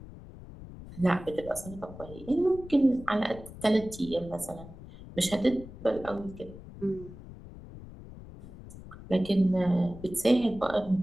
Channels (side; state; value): left; noise; rumble, 15 dB below the sound